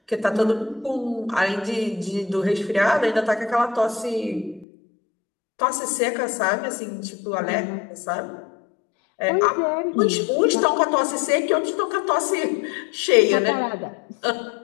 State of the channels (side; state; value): right; drops out; at 4.7 s